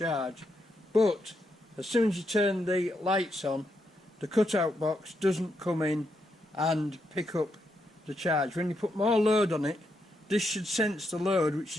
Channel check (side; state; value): both; normal; correlation 0.81